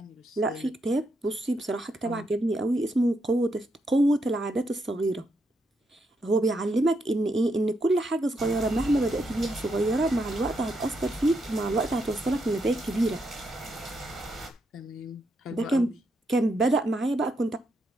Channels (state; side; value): normal; both; correlation 0.80